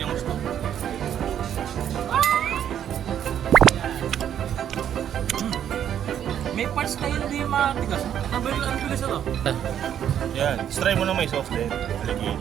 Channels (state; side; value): quieter; left; 9.7 dB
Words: ng gusto. May parts na hindi matigas. Ang bilis ito. Yan. Try mo na may sauce din.